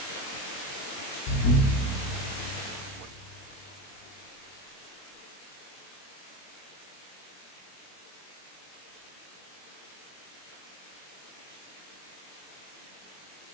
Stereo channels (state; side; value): late; right; 21 ms